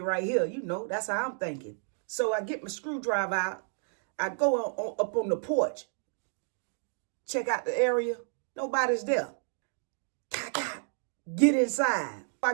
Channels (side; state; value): left; silent; digital silence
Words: here. You know, that's how I'm thinking. So I get my screwdriver out. I go up on the porch. Check out the area. Nobody's there. Get inside. I